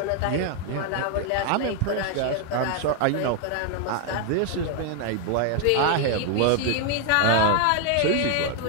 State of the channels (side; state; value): both; different; correlation 0.00